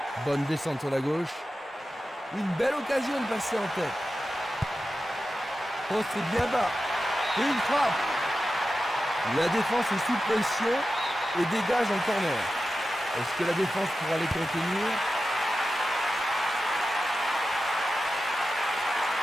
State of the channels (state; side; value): normal; both; correlation 0.92